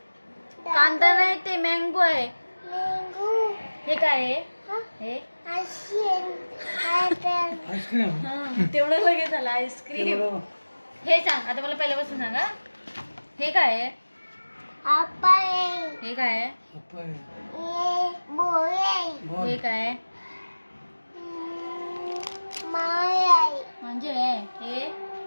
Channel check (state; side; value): inverted; both; correlation -1.00